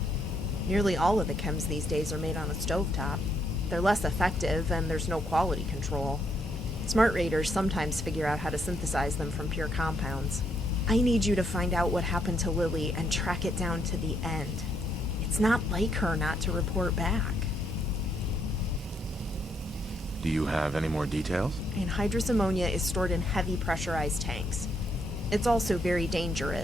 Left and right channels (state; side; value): normal; both; correlation 0.74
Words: Nearly all of the chems these days are made on a stovetop. They're less effective, and there's no quality control. Smart raiders sometimes figure out how to synthesize them from pure compounds. I need you to find out what happened to Lily and track it down to the end. It's not like her not to report back. Do you have any more details? Anhydrous ammonia is stored in heavy pressurized tanks. It's also very